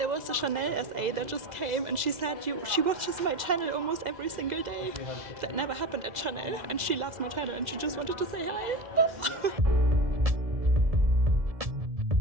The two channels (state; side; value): late; left; 2.0 ms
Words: was a Chanel SA that just came and she said she watches my channel almost every single day. That never happened at Chanel and she loves my channel and she just wanted to say hi.